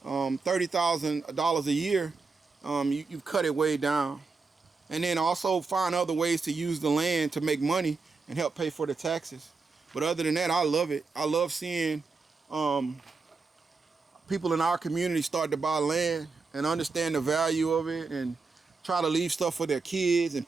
$30,000 a year, you've cut it way down. And then also find other ways to use the land to make money and help pay for the taxes. But other than that, I love it. I love seeing people in our community start to buy land and understand the value of it, and try to leave stuff for their kids and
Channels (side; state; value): left; quieter; 4.4 dB